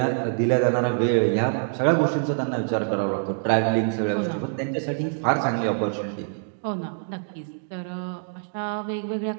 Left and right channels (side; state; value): left; silent; digital silence